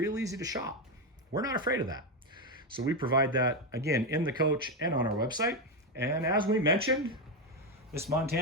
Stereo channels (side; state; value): both; normal; correlation 0.09